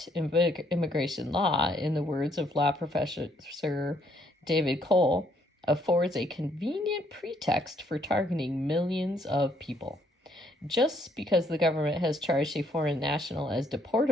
immigration law, in the words of law professor David Cole, affords a convenient pretext for targeting millions of people. Just because the government has charged a foreign national as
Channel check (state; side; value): normal; both; correlation 0.69